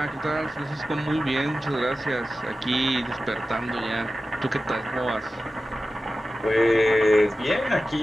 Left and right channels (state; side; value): normal; both; correlation 0.94